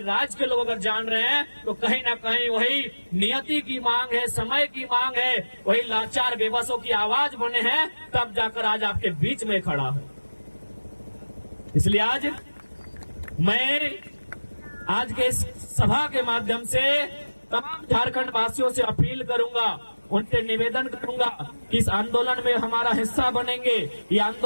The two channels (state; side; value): inverted; both; correlation -1.00